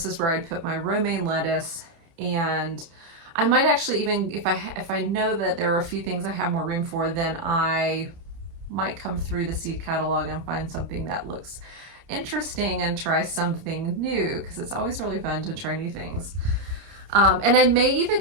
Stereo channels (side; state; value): left; late; 30 ms